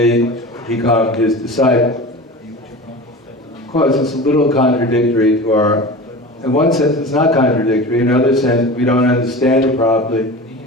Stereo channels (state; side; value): normal; both; correlation 0.33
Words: become his disciple. Of course, it's a little contradictory to our, in one sense it's not contradictory, in another sense we don't understand it properly,